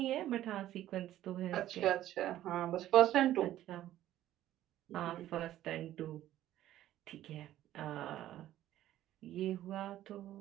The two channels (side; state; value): left; quieter; 13.3 dB